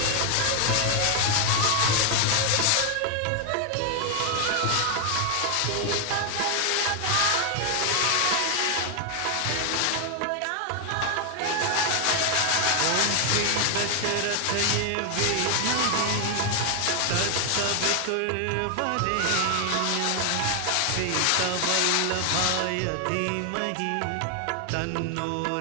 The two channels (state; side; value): different; both; correlation 0.00